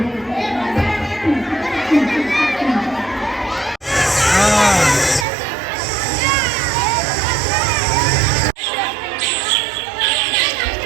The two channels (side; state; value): left; drops out; at 5.2 s